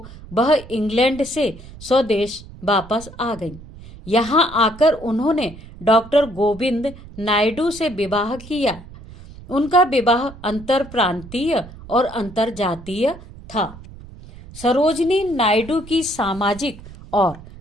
वह इंग्लैंड से स्वदेश वापस आ गई। यहाँ आकर उन्होंने डॉक्टर गोविंद नायडू से विवाह किया। उनका विवाह अंतर प्रांतीय और अंतरजातीय था। सरोजनी नायडू की सामाजिक और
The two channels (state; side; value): noise; right; rumble, 17 dB below the sound